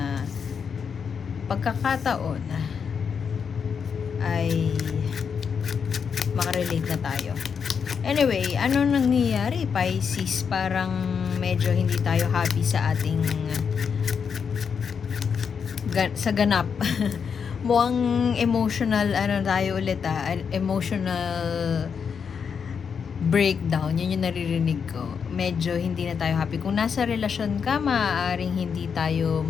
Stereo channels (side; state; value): right; quieter; 6.5 dB